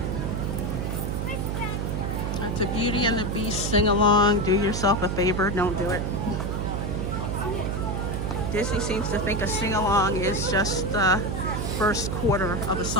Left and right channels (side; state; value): right; noise; hum, 2 dB below the sound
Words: That's a Beauty and the Beast sing-along. Do yourself a favor, don't do it. Disney seems to think a sing-along is just the first quarter of a